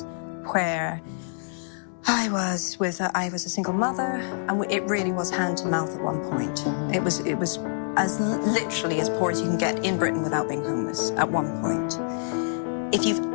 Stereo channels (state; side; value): silent; right; digital silence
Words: where I was a single mother, and it really was hand to mouth at one point. It was as literally as poor as you can get in Britain without being homeless at one point. If you've